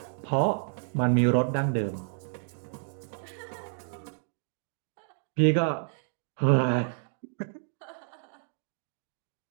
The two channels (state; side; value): silent; left; digital silence